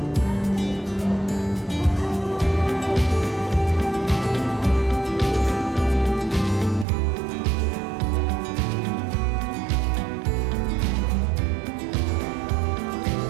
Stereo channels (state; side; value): drops out; left; at 6.9 s